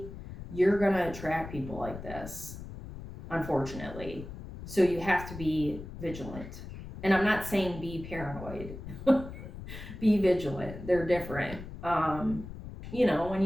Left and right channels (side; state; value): left; noise; rumble, 11 dB below the sound